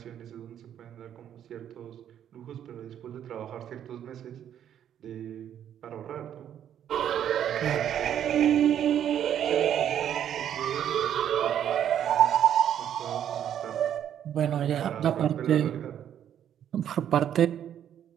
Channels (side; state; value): left; quieter; 9.9 dB